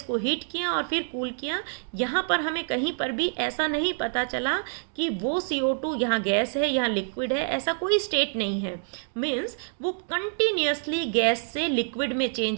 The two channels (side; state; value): left; silent; digital silence